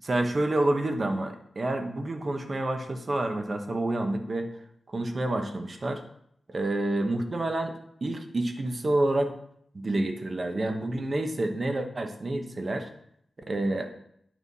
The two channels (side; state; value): both; normal; correlation 0.95